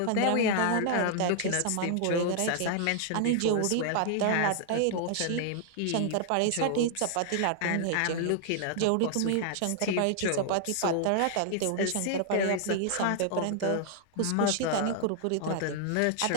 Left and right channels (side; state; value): both; different; correlation 0.00